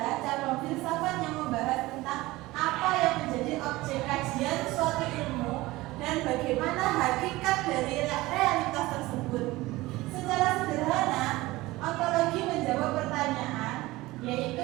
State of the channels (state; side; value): quieter; left; 19.4 dB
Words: cabang filsafat yang membahas tentang apa yang menjadi objek kajian suatu ilmu dan bagaimana hakikat dari realitas tersebut. Secara sederhana, ontologi menjawab pertanyaan yaitu